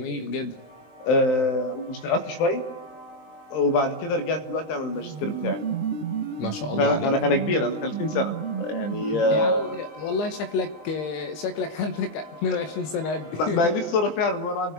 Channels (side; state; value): right; late; 19 ms